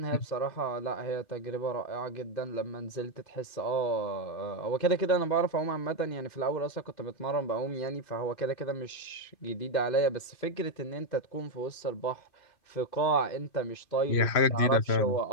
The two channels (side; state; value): right; late; 2.5 ms